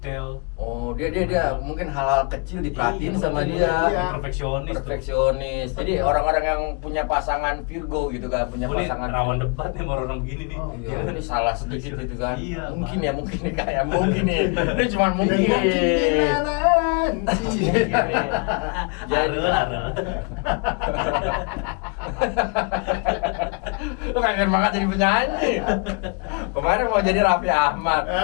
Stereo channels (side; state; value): right; quieter; 33.3 dB